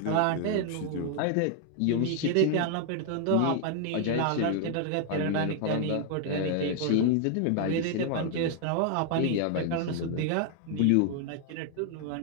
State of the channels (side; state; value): both; different; correlation 0.00